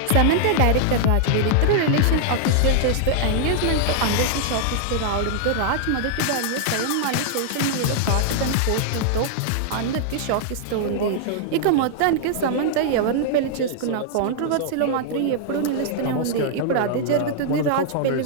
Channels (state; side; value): different; both; correlation -0.01